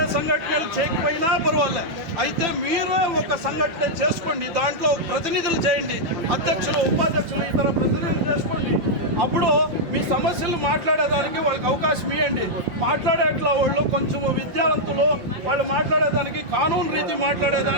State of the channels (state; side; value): late; left; 5.4 ms